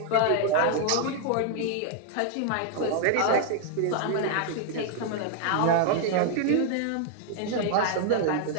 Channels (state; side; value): different; both; correlation 0.00